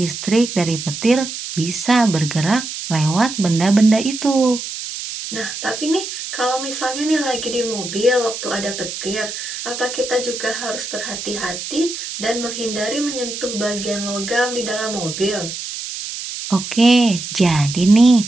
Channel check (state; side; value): noise; right; hiss, 7 dB below the sound